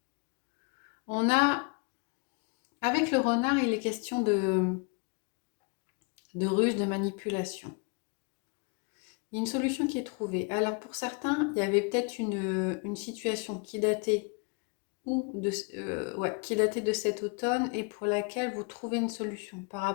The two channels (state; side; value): quieter; right; 33.1 dB